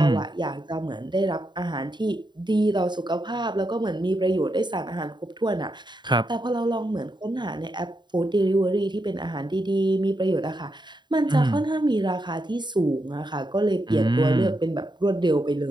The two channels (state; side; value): late; left; 0.22 ms